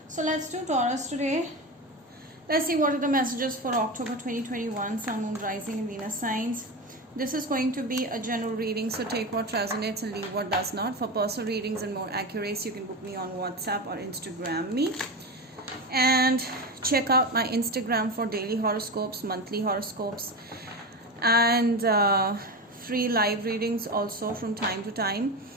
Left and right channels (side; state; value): both; normal; correlation 0.21